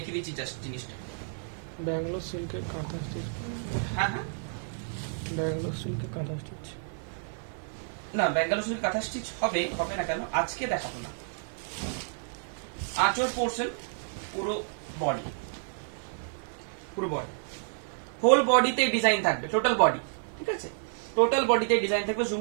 দিচ্ছি জাস্ট জিনিসটা। ব্যাঙ্গালোর সিল্কের কাঁথা স্টিচ, হ্যাঁ হ্যাঁ, ব্যাঙ্গালোর সিল্কের কাঁথা স্টিচ না ব্যাঙ্গালোর সিল্ক কাঁথা স্টিচ হবে না কেন, আজকে দেখাবো না। আঁচল পোর্শন পুরো বডি, পুরো বডি, হোল বডিতে ডিজাইন থাকবে, টোটাল বডি, ঠিক আছে, টোটাল বডিতে ডিজাইন থাকবে। জুম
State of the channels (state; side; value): silent; left; digital silence